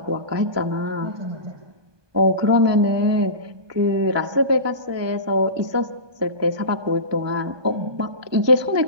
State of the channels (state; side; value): late; left; 1.2 ms